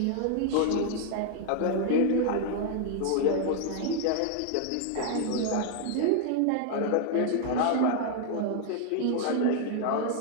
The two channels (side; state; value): both; different; correlation 0.00